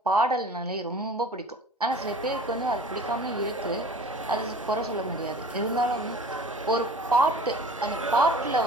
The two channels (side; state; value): both; normal; correlation 0.44